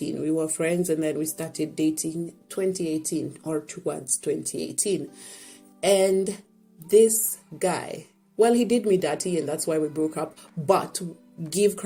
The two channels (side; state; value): both; identical; correlation 1.00